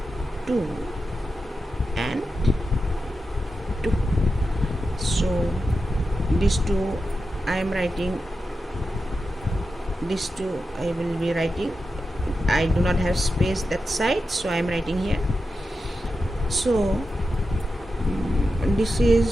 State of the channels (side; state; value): both; normal; correlation 0.90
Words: 2 and 2. So these two I am writing, these two I will be writing. I do not have space that side, so I am writing here. So this